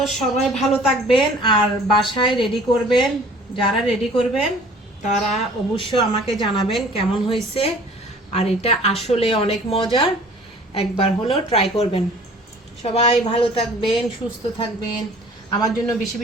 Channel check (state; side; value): normal; both; correlation 0.50